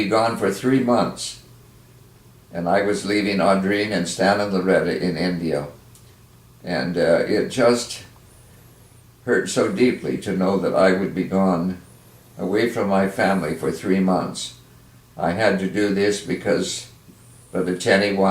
gone for 3 months. And I was leaving Audrine and Stan and Loretta in India. And it just hurt so deeply to know that I would be gone away from my family for 3 months. I had to do this because Brother Tenney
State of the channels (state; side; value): identical; both; correlation 1.00